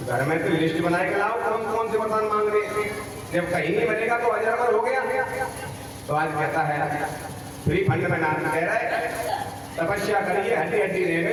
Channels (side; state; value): both; identical; correlation 1.00